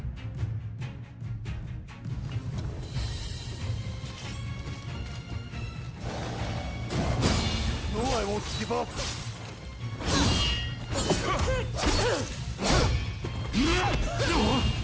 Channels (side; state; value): both; identical; correlation 1.00